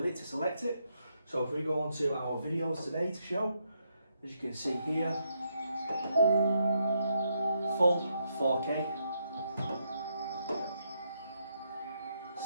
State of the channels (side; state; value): both; inverted; correlation -0.78